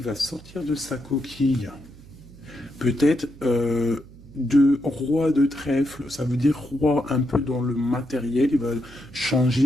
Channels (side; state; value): right; noise; hum, 21 dB below the sound